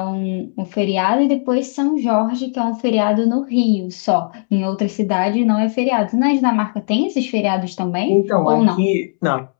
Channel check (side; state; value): right; silent; 68 dB below the other